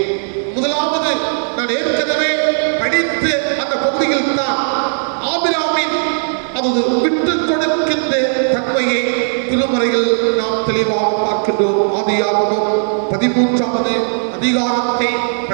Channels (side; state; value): left; silent; 69 dB below the other